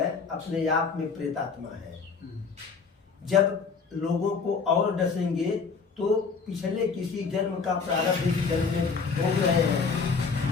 अपने आप में प्रेतात्मा है, जब लोगों को और डसेंगे तो पिछले किसी जन्म का प्रारब्ध इस जन्म में भोग रहे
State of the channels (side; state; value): right; quieter; 5.1 dB